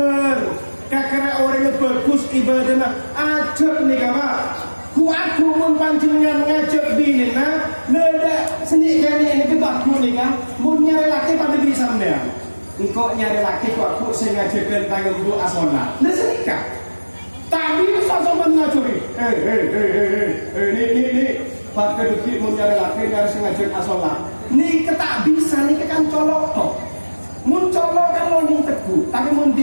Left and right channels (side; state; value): both; inverted; correlation -1.00